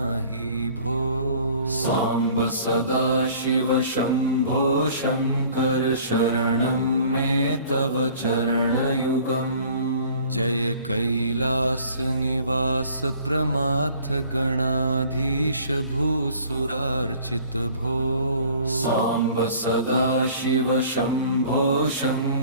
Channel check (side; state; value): both; inverted; correlation -0.51